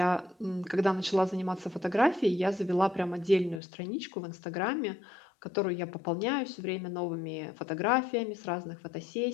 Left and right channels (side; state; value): right; drops out; at 3.6 s